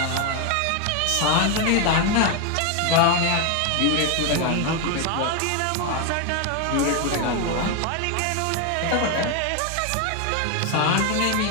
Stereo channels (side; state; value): both; different; correlation 0.01